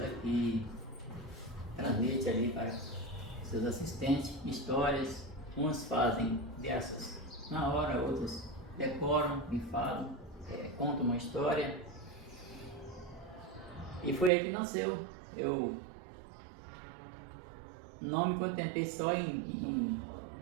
que transmite ali para seus assistentes histórias. Uns fazem versos na hora, outros decoram, enfalam, contam uma história. E foi aí que nasceu. Eu não me contentei só em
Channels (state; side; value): drops out; left; at 14.3 s